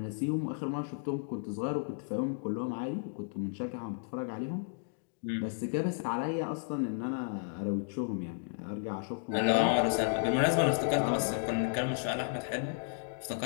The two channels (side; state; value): right; silent; digital silence